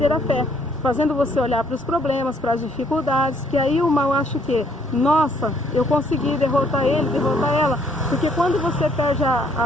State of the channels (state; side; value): normal; both; correlation 0.66